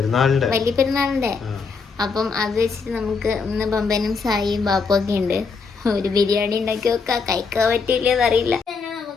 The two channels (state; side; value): quieter; right; 5.0 dB